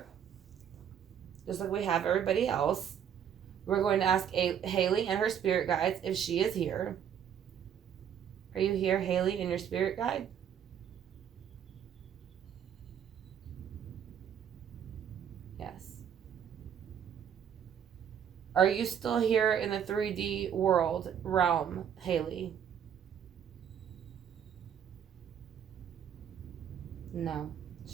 Just like we have everybody else. We're going to ask Haleigh and her spirit guides if she is here. Are you here, Haleigh, and your spirit guide? Yes. Are you still here in the 3D world realm, Haleigh? No.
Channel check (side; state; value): left; quieter; 8.7 dB